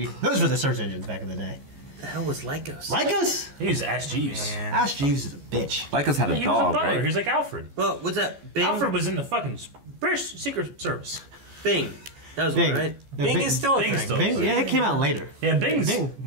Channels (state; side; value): late; left; 14 ms